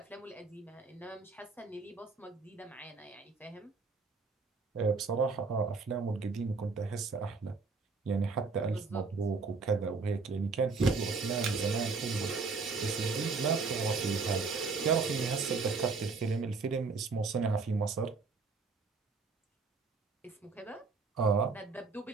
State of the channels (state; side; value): quieter; left; 4.4 dB